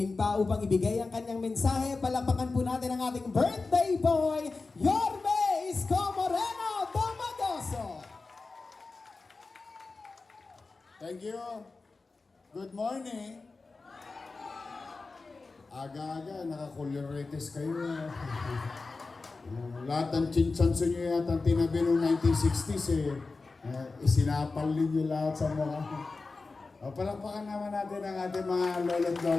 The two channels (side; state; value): right; quieter; 3.9 dB